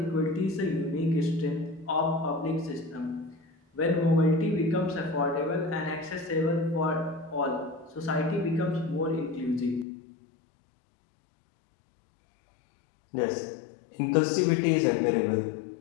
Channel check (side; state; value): right; drops out; at 9.9 s